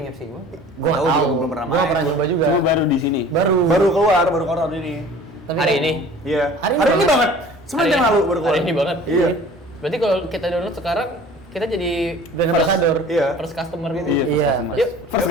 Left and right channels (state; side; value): normal; both; correlation 0.45